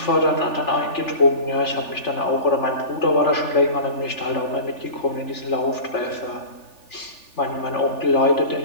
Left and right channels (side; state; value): right; late; 3.4 ms